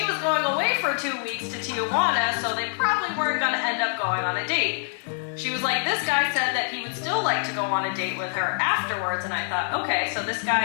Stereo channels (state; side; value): silent; right; 62 dB below the other